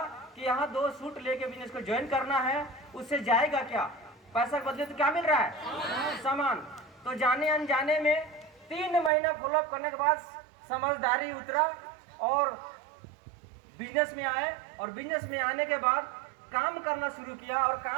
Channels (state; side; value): drops out; left; at 9.1 s